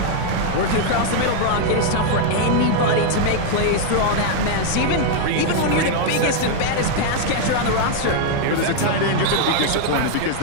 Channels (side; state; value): both; different; correlation 0.00